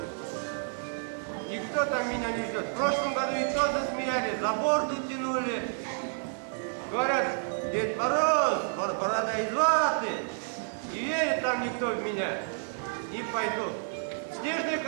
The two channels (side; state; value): left; silent; digital silence